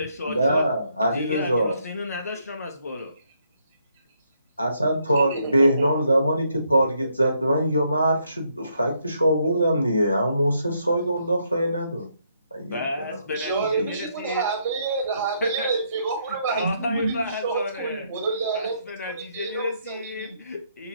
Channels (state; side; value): inverted; both; correlation -0.74